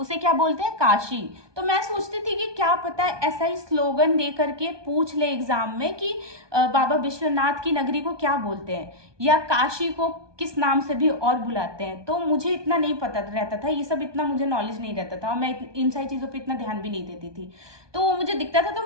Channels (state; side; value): late; left; 1.2 ms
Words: क्या बोलते हैं, काशी। तो मैं सोचती थी कि क्या पता है ऐसा ही स्लोगन दे करके पूछ ले एग्जाम में कि बाबा विश्वनाथ की नगरी को क्या बोलते हैं, या काशी को किस नाम से भी और बुलाते हैं। तो मुझे इतना नहीं पता रहता था, ये सब इतना मुझे नॉलेज नहीं रहता था, और मैं इन सारी चीज़ों पे इतना ध्यान भी नहीं देती थी। तो वो मुझे दिखता था तो